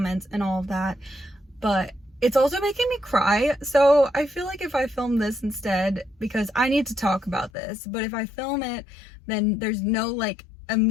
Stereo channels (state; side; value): drops out; right; at 7.5 s